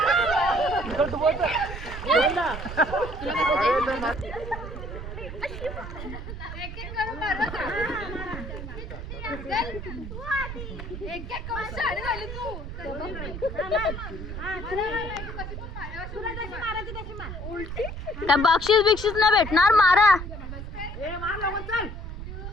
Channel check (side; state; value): right; noise; rumble, 8 dB below the sound